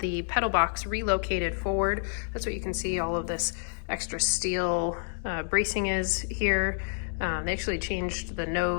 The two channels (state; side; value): silent; right; digital silence